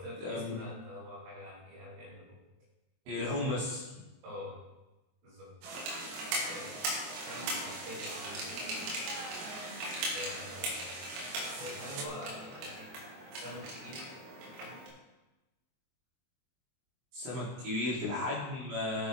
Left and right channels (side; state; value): left; late; 23 ms